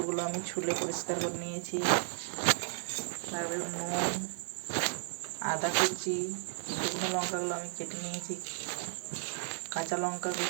আমি ছুলে পরিষ্কার করে নিয়েছি। লাগবে নুন, আদা কুচি, শুকনো লঙ্কাগুলো আমি কেটে নিয়েছি, কাঁচা লঙ্কা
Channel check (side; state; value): left; silent; digital silence